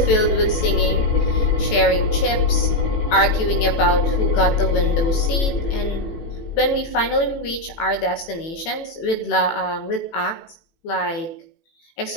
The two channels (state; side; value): late; right; 18 ms